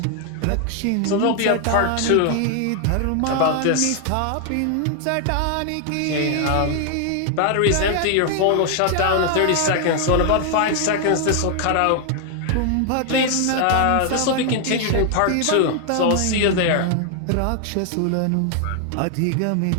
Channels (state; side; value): different; both; correlation 0.00